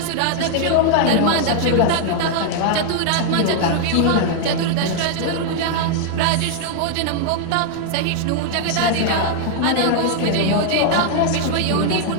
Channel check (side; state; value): both; different; correlation 0.00